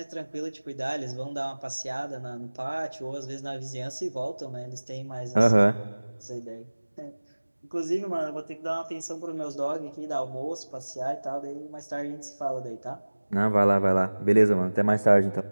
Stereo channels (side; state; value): both; inverted; correlation -1.00